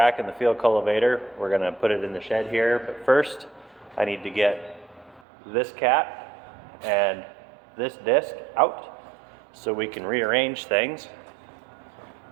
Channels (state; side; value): drops out; left; at 5.2 s